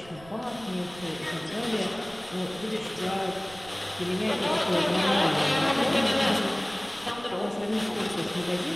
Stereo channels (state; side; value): noise; right; rumble, 21 dB below the sound